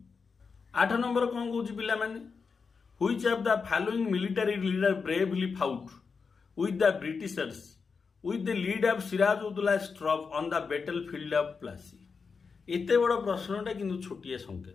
8 नंबर कौन कहूँ पिला माने which of the following military leader bravely fought with the Britishers with the lead of सिराजुद्दौला's troop on the battlefield of Plassey. इतने बड़ प्रश्नटा किंतु छोटिए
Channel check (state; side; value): quieter; right; 5.2 dB